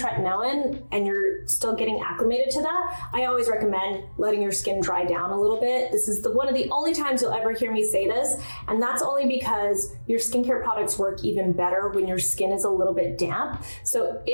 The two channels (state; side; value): inverted; both; correlation -1.00